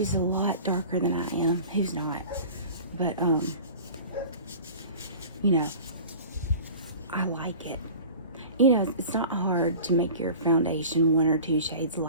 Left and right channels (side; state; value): both; inverted; correlation -0.40